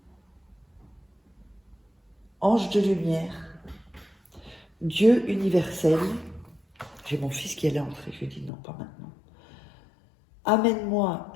Ange de lumière, Dieu universel. J'ai mon fils qui allait entrer, je lui ai dit non, pas maintenant. Amène-moi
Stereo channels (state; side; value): drops out; right; at 8.5 s